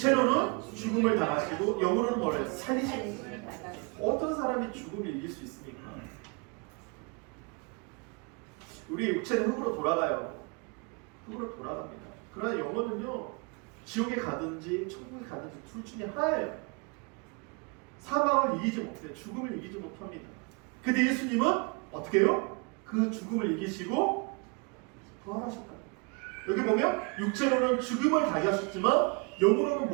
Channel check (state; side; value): quieter; left; 32.4 dB